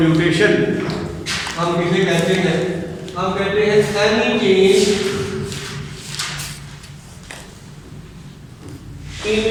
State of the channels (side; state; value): both; identical; correlation 1.00